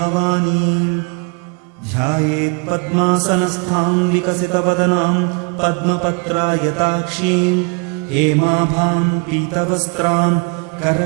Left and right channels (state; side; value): quieter; left; 35.7 dB